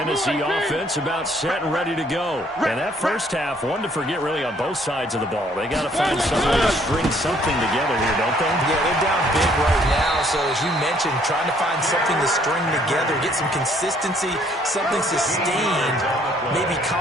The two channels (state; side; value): normal; both; correlation 0.63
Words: offense about set and ready to go. And that first half, one to forget really on both sides of the ball. They got to find some way to string something together here, don't they? Yeah, they're down big right now. So as you mentioned, trying to find something to string together, get some consistency, something sustained, maybe